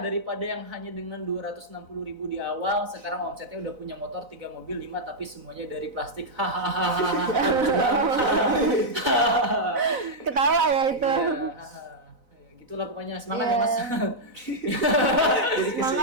yang hanya dengan 260.000 di awal. Sekarang omsetnya udah punya motor 3 mobil 5 tapi semuanya dari plastik. Hahaha. Ketawa ya itu. Ya, gitulah pokoknya semangat Iya. ya Mas.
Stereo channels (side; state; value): left; late; 4.0 ms